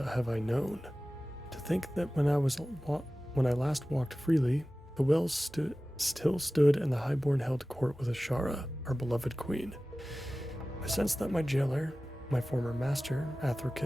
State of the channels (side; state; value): both; normal; correlation 0.96